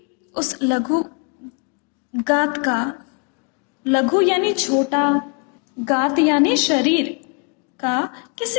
उस लघु गात का, लघु यानी छोटा, गात यानी शरीर का,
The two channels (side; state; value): right; quieter; 36.5 dB